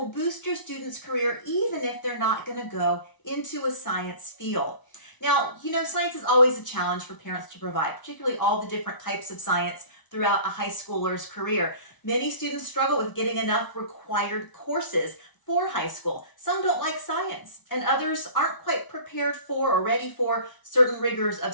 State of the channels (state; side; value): late; right; 1.0 ms